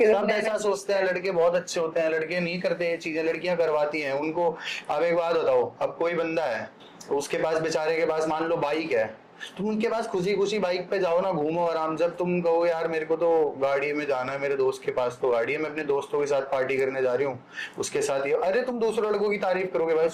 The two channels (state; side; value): identical; both; correlation 1.00